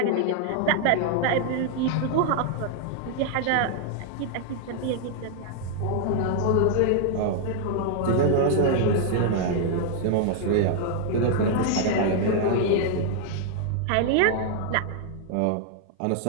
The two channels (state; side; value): different; both; correlation 0.00